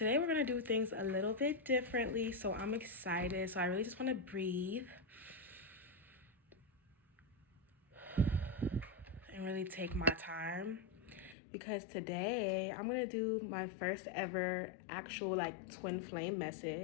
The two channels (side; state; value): right; drops out; at 11.4 s